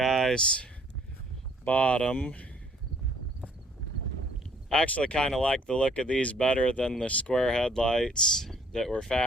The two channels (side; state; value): both; normal; correlation 0.60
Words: bought them. I actually kind of like the look of these better than the square headlights that were